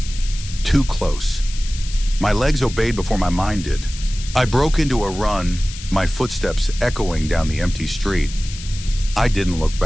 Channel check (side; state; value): left; noise; hiss, 13 dB below the sound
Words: Too close. My legs obeyed before my mind did. I broke into a run, my footsteps echoing down the empty street. I didn't look